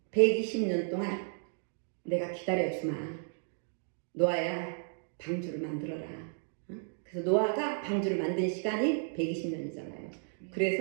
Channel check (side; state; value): left; silent; digital silence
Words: 120년 동안 내가 기다려주마, 노아야, 방주를 만들어라. 그래서 노아가 방주를 만든 시간이 120년이잖아요.